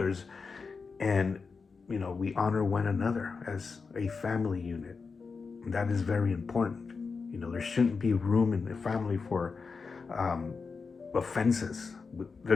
And we honor one another as a family unit. And that is very important. There shouldn't be room in the family for offenses.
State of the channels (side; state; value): right; quieter; 4.8 dB